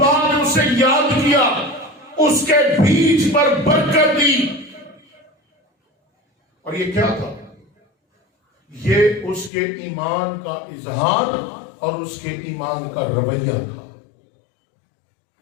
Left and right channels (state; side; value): drops out; right; at 9.5 s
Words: ने उसे याद किया, उसके बीज पर बरकत दी। और ये क्या था? ये उसके ईमान का इजहार और उसके ईमान का रवैया था।